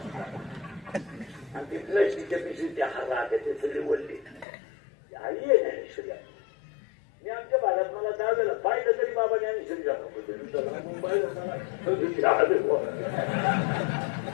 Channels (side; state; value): right; drops out; at 4.5 s